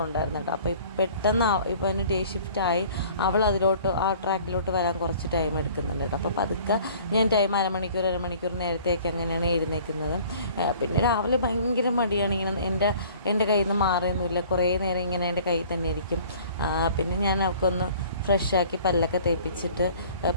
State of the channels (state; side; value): inverted; both; correlation -0.51